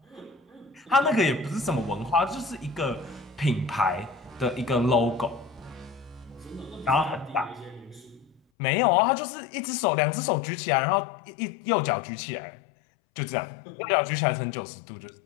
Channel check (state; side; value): drops out; right; at 8.4 s